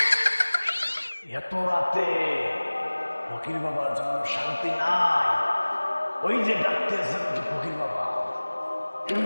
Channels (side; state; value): both; inverted; correlation -1.00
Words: এত রাতে ফকির বাবার জন্য শান্তি নাই। ওই যে ডাকতেছে নাকি ফকির বাবা,